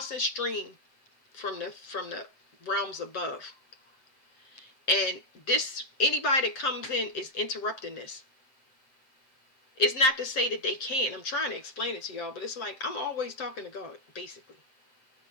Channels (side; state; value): right; late; 7.7 ms